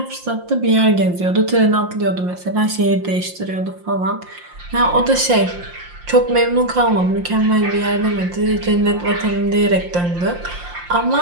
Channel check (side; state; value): left; late; 5.7 ms